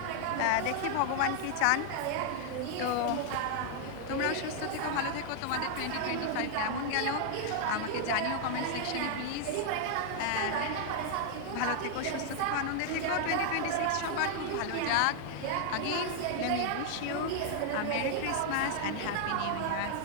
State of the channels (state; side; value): different; both; correlation 0.00